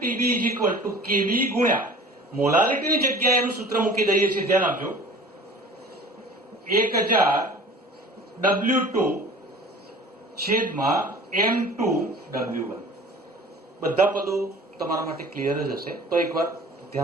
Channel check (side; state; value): both; normal; correlation 0.43